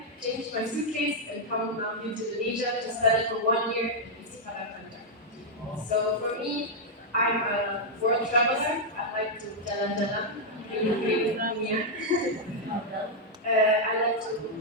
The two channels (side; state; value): both; normal; correlation -0.03